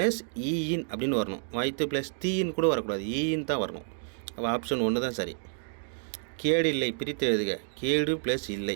ஈயின் அப்படின்னு வரணும். வாய்த்து ப்ளஸ் தீயின் கூட வரக்கூடாது, ஈயின் தான் வரணும். அப்போ ஆப்ஷன் 1 தான் சரி. கேடு இல்லை பிரித்து எழுதுக. கேடு ப்ளஸ்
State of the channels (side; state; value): left; silent; digital silence